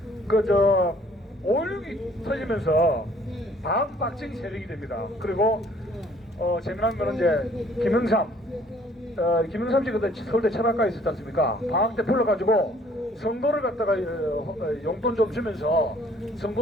5.16이 터지면서 반박정희 세력이 됩니다. 그리고 재미난 거는 이제 김영삼 씨 그때 서울대 철학과에 있었지 않습니까? 방학 때 풀려가지고 선거를 갖다가 용돈 좀 주면서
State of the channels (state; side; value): normal; both; correlation 0.59